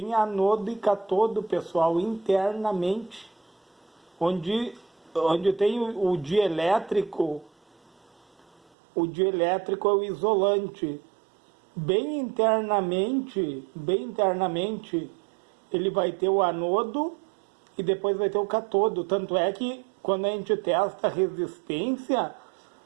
anodo e catodo, pessoal, internamente. Onde tem o dielétrico é o isolante. Bem internamente, ele vai ter o anodo e depois vai ter o catodo. Tanto é que quando a gente testa a resistência,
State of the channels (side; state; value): left; drops out; at 8.6 s